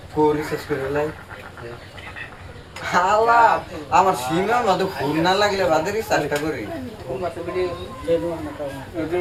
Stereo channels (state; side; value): identical; both; correlation 1.00